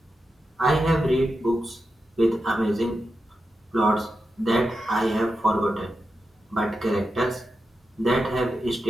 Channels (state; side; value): normal; both; correlation 0.89